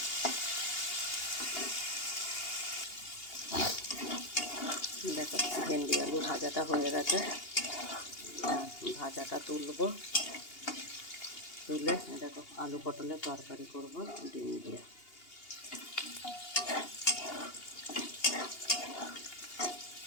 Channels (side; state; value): right; late; 2.8 ms